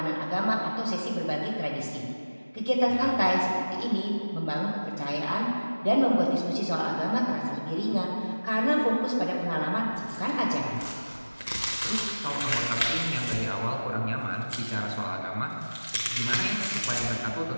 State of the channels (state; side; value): inverted; both; correlation -1.00